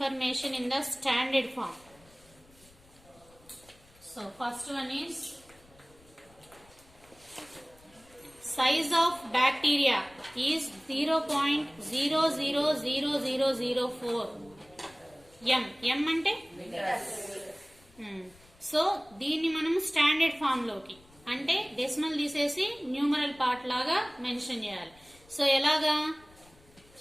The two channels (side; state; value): left; noise; rumble, 27 dB below the sound